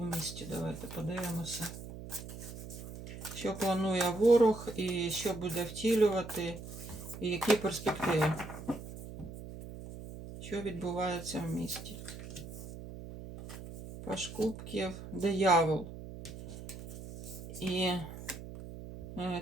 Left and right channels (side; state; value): right; noise; hum, 11 dB below the sound